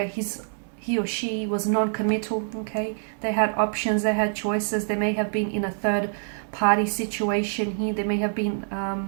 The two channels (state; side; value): silent; left; digital silence